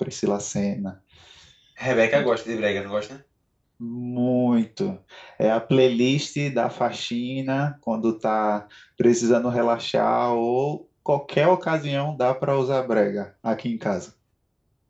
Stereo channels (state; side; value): identical; both; correlation 1.00